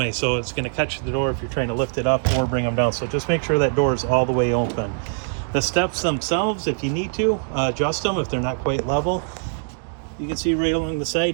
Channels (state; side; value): silent; left; digital silence